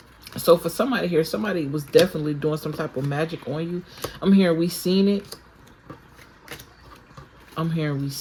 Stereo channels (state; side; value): identical; both; correlation 1.00